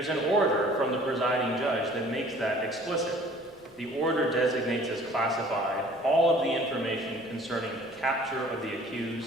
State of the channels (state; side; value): normal; both; correlation 0.51